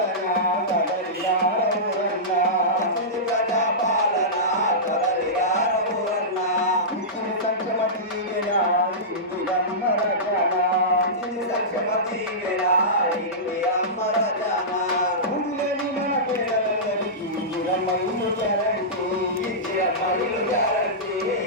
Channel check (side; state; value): both; normal; correlation -0.16